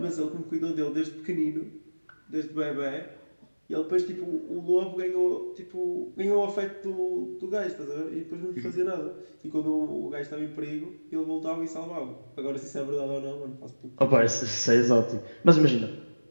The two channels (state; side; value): inverted; both; correlation -1.00